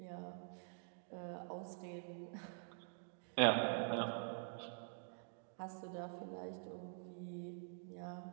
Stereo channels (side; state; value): left; silent; digital silence